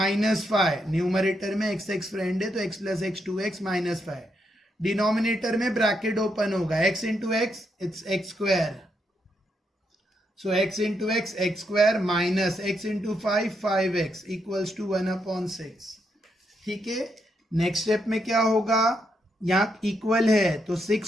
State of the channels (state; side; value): normal; both; correlation 0.79